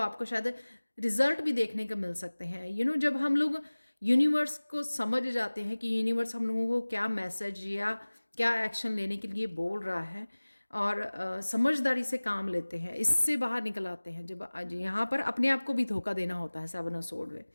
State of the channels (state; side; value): inverted; both; correlation -1.00